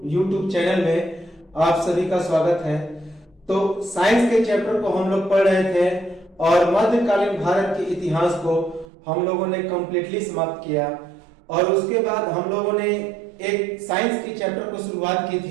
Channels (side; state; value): left; drops out; at 8.8 s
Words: चैनल में आप सभी का स्वागत है। तो साइंस के चैप्टर को हम लोग पढ़ रहे थे और मध्यकालीन भारत के इतिहास को हम लोगों ने कंप्लीटली समाप्त किया और उसके बाद हम लोगों ने एक साइंस के चैप्टर को शुरुआत की